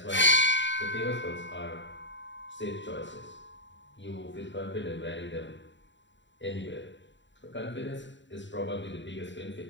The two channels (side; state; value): right; late; 0.53 ms